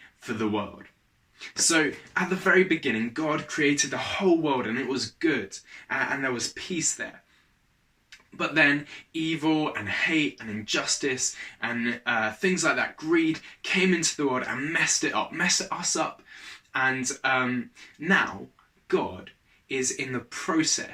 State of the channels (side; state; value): both; identical; correlation 1.00